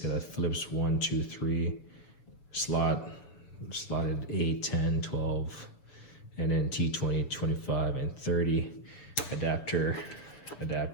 a Phillips 1, 2, 3 slotted 8, 10, 12, and then T20, 25, and 30 adapter,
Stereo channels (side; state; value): right; late; 7.0 ms